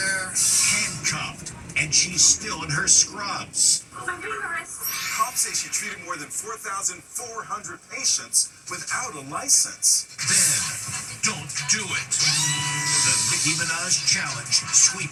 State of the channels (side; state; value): both; identical; correlation 1.00